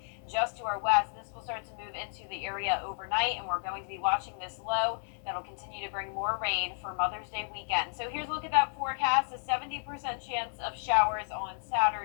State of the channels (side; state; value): right; silent; 56 dB below the other